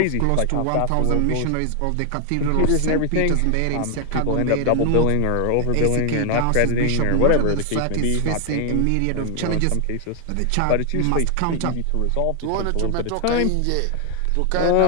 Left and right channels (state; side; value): different; both; correlation 0.00